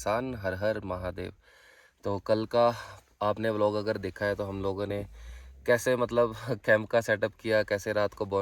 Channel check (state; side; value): identical; both; correlation 1.00